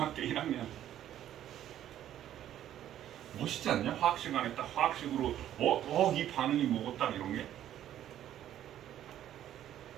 1학년. 멋있지 않냐? 화학 시간에 딱 화학식으로 이 반응이 뭐고 딱 이런 게.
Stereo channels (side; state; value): left; quieter; 11.6 dB